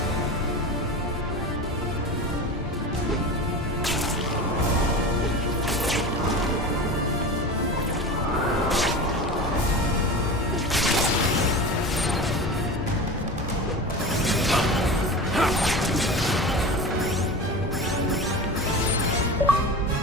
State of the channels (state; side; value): normal; both; correlation 0.30